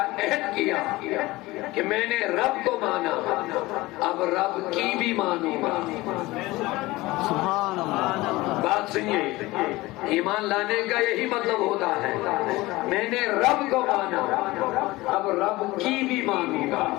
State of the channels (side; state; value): right; quieter; 19.9 dB